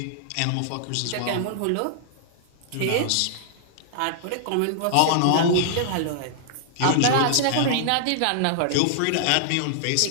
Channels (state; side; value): different; both; correlation -0.01